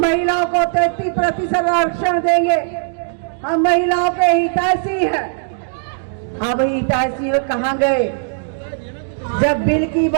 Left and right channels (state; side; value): silent; left; digital silence